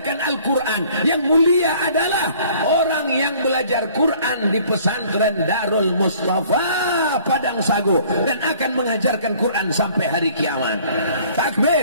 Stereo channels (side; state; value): both; inverted; correlation -0.55